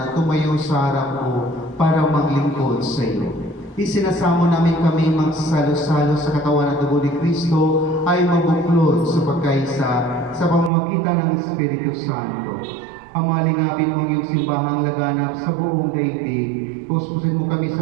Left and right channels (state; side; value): drops out; left; at 10.7 s